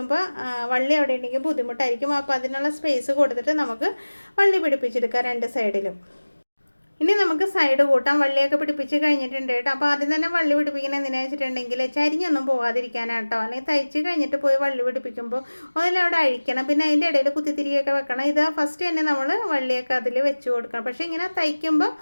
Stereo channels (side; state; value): both; inverted; correlation -1.00